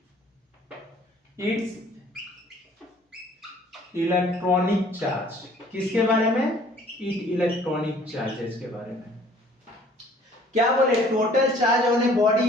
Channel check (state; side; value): normal; both; correlation 0.55